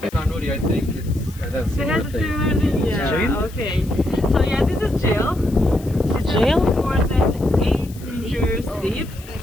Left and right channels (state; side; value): noise; left; hiss, 21 dB below the sound